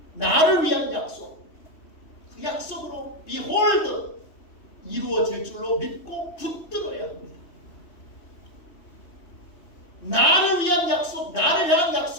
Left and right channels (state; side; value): late; right; 3.1 ms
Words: 나를 위한 약속. 그 약속으로 behold 이루어질 줄로 믿고 붙들어야 합니다. 나를 위한 약속, 나를 향한